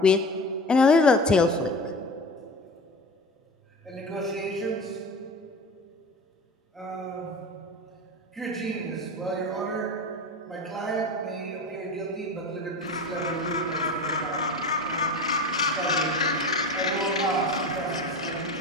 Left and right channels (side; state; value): both; normal; correlation 0.32